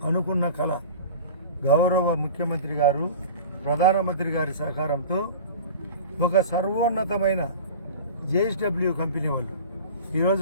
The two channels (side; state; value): both; inverted; correlation -0.37